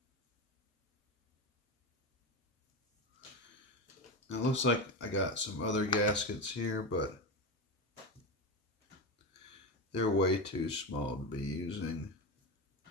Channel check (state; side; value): normal; both; correlation 0.17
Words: Now it looks like I got some other gaskets here, but they're way too small to be using